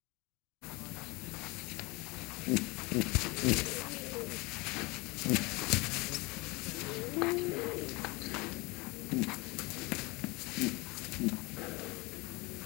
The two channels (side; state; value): right; quieter; 25.4 dB